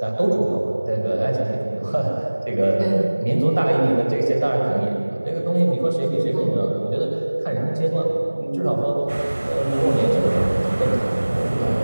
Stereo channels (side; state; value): both; inverted; correlation -1.00